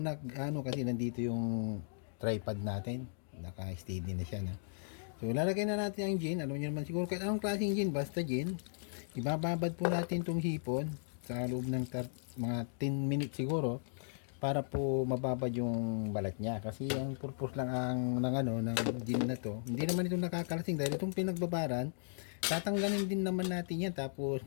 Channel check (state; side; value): silent; right; digital silence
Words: kasi nandito yung tripod natin. Naka-steady na siya. No? So, lalagay na natin ang gin. Alam niyo naman siguro kahit anong klaseng gin. Basta gin. Ibababad po natin itong hipon sa loob ng mga 10 minutes siguro para po mababad yung balat niya. Kasi ang purpose lang ng gin na to. Hindi naman ito nakakalasing dahil itong pinagbabaran, tatanggalin din naman natin yan. Tapos